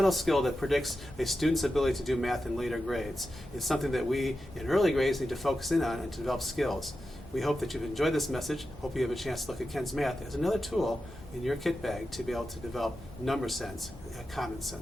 skill that predicts a student's ability to do math in later grades. It's something that we in early grades need to focus in on and to develop skills. We hope that you've enjoyed this message. Hope you have a chance to look at Ken's Math as another tool in your kit bag to be able to develop number sense in a common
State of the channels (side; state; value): both; normal; correlation 0.91